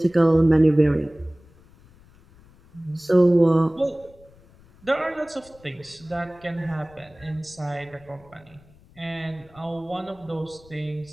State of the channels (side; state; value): left; noise; rumble, 26 dB below the sound